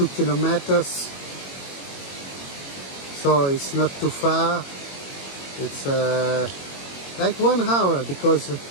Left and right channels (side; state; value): right; late; 22 ms